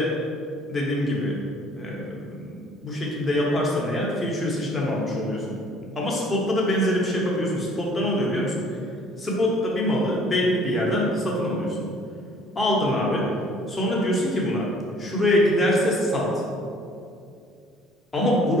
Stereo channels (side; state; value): both; normal; correlation 0.56